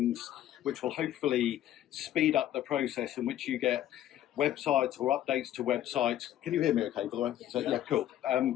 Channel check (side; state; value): right; quieter; 12.3 dB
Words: which will hopefully speed up the process in which you get websites or updates to websites. Can you hear me okay, by the way? So, yeah, cool.